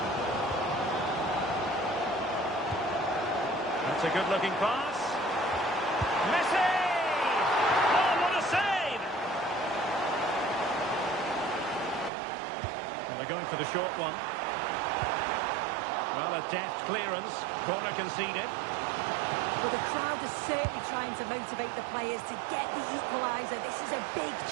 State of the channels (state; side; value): drops out; left; at 12.1 s